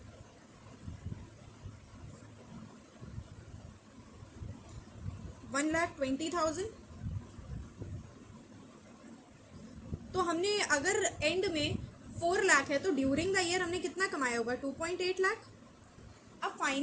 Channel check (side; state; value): both; identical; correlation 1.00